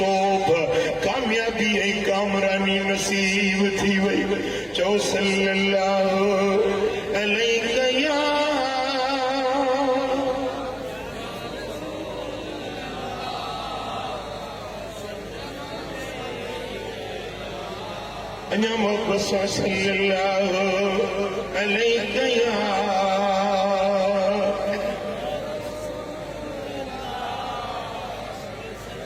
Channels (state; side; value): identical; both; correlation 1.00